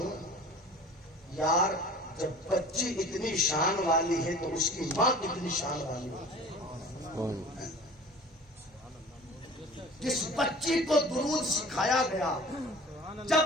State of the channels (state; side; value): normal; both; correlation 0.43